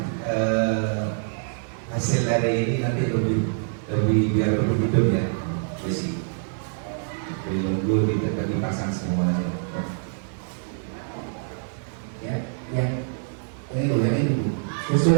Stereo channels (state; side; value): silent; left; digital silence